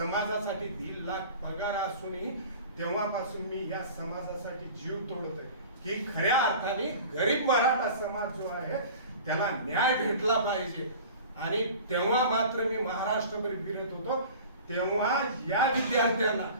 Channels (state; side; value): inverted; both; correlation -0.41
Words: 1.5 लाख पगार असूनही तेव्हापासून मी या समाजासाठी जीव तोडतोय की खऱ्या अर्थाने गरीब मराठा समाज जो आहे त्याला न्याय भेटला पाहिजे. आणि तेव्हा मात्र मी महाराष्ट्रभर फिरत होतो. तेव्हा या विद्यार्थ्यांना